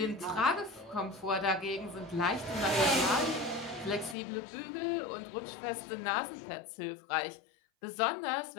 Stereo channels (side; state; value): right; drops out; at 4.2 s